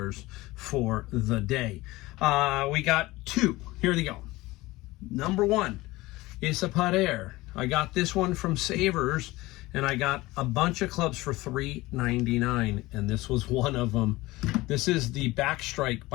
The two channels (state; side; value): quieter; right; 19.7 dB